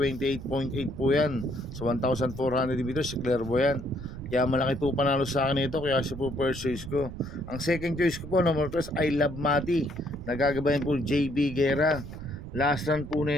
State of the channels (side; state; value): right; noise; rumble, 11 dB below the sound